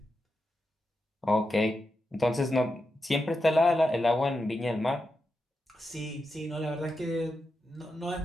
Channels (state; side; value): normal; both; correlation 0.88